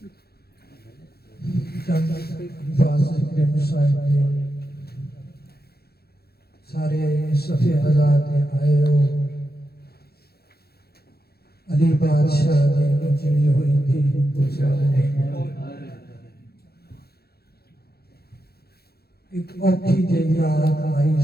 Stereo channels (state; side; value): late; right; 0.46 ms